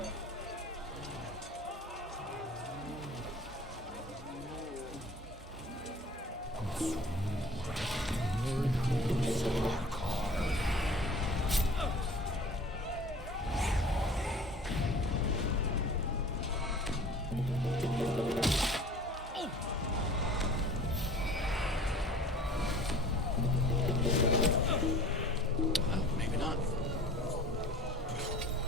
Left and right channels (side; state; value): both; normal; correlation 0.45